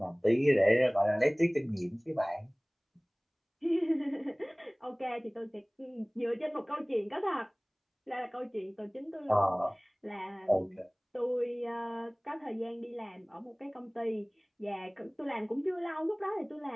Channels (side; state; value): both; identical; correlation 1.00